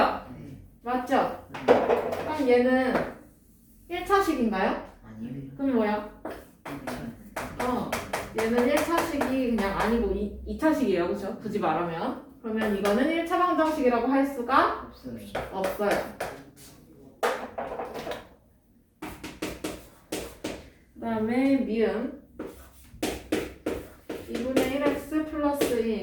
네. 맞죠? 그럼 얘는 1차식인가요? 아니요. 그럼 뭐야? 얘는 1차식이 그냥 아니고 2차식이에요. 그쵸? 굳이 말하면. 그러면 이거는 1차 방정식이라고 할 수가 없어요. 없어요. 그 다음에 미음 2분의 1x 플러스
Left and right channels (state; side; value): identical; both; correlation 1.00